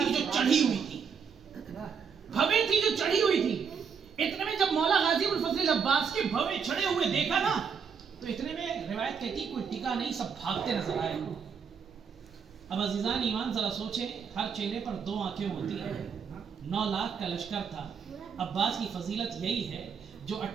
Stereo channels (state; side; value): quieter; left; 6.4 dB